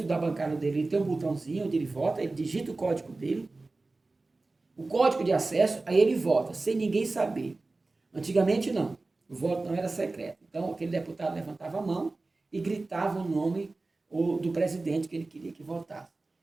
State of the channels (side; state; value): left; quieter; 3.4 dB